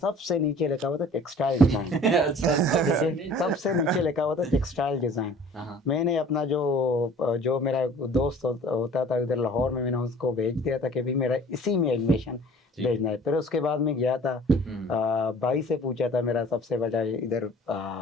नीचे लिखा हुआ था टेक्सटाइल डिज़ाइन। सबसे नीचे लिखा हुआ था टेक्सटाइल डिज़ाइन। मैंने अपना जो मेरा दोस्त होता था उधर लाहौर में, मैंने उसको भेज दिया था कि भाई मेरा इसी में एडमिशन। भेजना है। फिर उसके बाद में गया था, भाई से पूछा था, मेरा सबसे बड़ा इधर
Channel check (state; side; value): normal; both; correlation 0.48